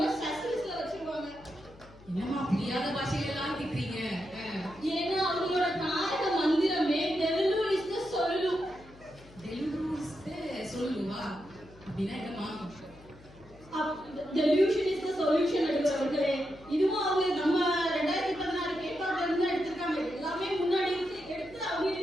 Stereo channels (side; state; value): left; noise; hum, 22 dB below the sound